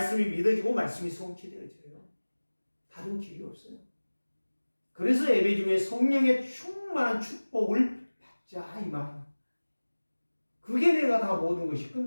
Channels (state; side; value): inverted; both; correlation -1.00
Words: 믿어지고 말씀이 성취되어져요. 다른 길이 없어요. 그래서 예배 중에 성령의 충만한 축복을 받자 이 말이에요. 그게 내가 다 모든 것이